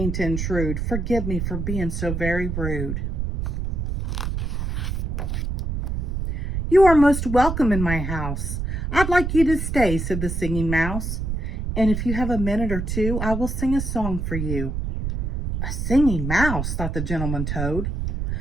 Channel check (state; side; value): noise; right; rumble, 2 dB below the sound